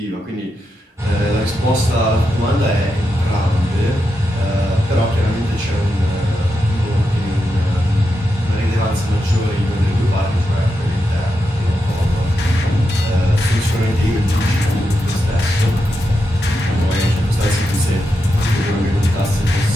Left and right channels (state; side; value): normal; both; correlation 0.86